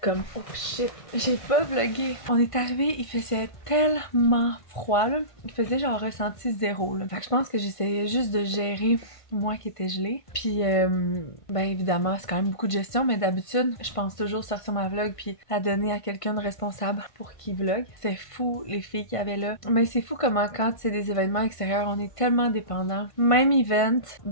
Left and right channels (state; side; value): late; right; 1.5 ms